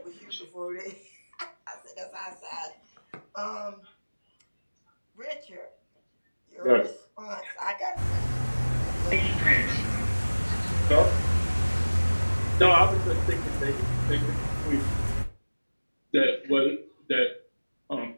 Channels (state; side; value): inverted; both; correlation -1.00